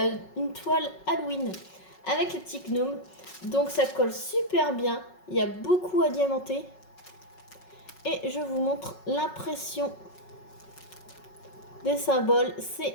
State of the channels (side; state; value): right; late; 5.4 ms